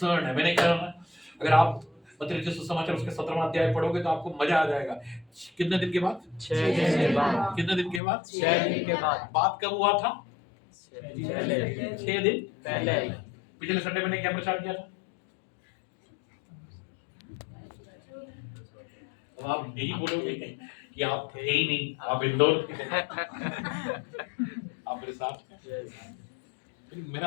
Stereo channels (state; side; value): drops out; right; at 8.0 s